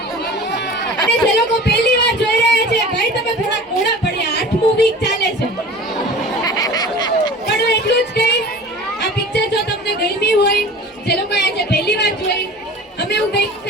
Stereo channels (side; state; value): both; normal; correlation 0.40